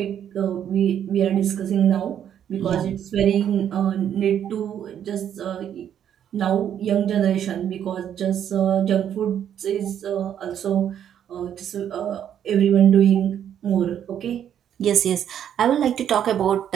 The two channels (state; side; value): quieter; left; 9.6 dB